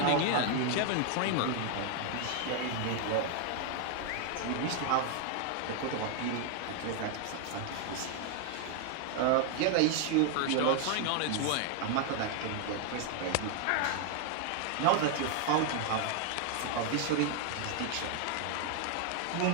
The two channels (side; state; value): both; different; correlation 0.00